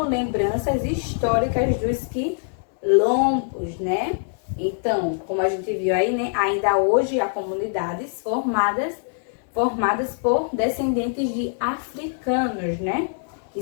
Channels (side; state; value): right; silent; digital silence